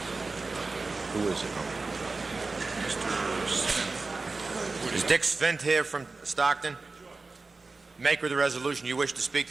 Who is it? Mr. Smith. Is Dick Svint here from Stockton? Maker of the resolution, you wish to speak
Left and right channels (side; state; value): left; quieter; 3.7 dB